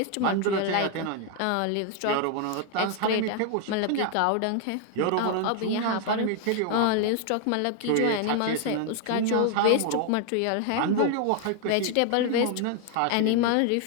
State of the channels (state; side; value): different; both; correlation 0.00